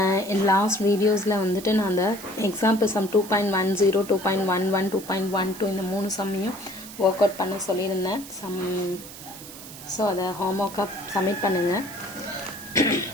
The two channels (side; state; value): right; noise; hiss, 15 dB below the sound